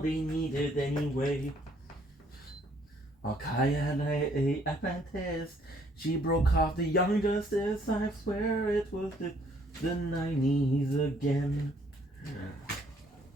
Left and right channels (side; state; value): both; normal; correlation 0.64